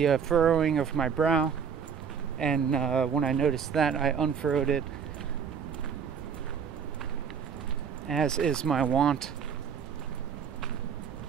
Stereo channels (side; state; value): left; quieter; 7.0 dB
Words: furrowing of my brow, and when I noticed that, I unfurrowed it, as is my wont.